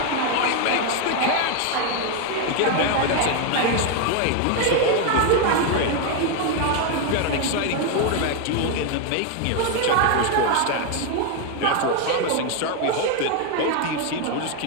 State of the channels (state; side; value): different; both; correlation 0.01